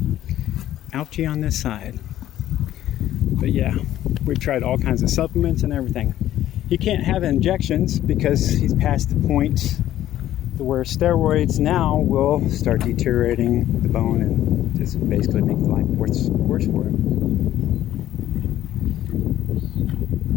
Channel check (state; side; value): quieter; right; 12.8 dB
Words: Ouchie on this side. But yeah, we've tried all kinds of supplements and everything. He can't have injections because he's past the point to where steroids now will start deteriorating the bone and just basically make life worse for him.